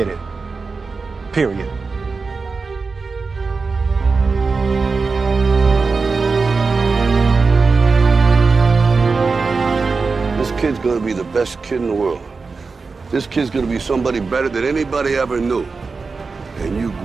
it. Period. This kid's gonna be the best kid in the world. This kid's gonna be somebody better than anybody ever knew. And you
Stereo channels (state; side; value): quieter; left; 4.4 dB